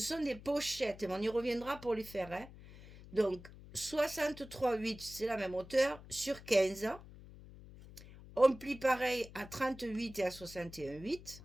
des pochettes. On y reviendra pour les faire. Hein. Donc, 63,8, c'est la même hauteur, sur 15. On plie pareil à 38 et à 61,8.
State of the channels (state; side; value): noise; left; hum, 17 dB below the sound